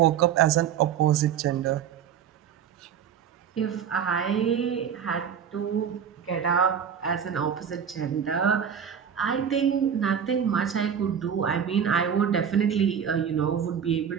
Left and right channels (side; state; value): left; quieter; 8.1 dB